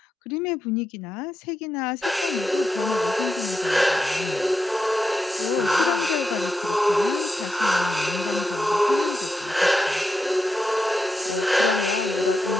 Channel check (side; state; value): both; normal; correlation 0.86